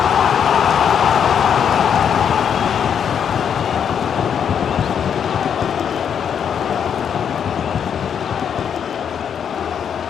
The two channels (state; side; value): quieter; right; 8.0 dB